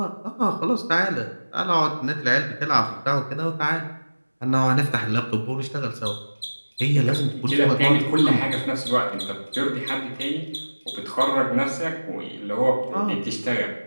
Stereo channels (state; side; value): inverted; both; correlation -1.00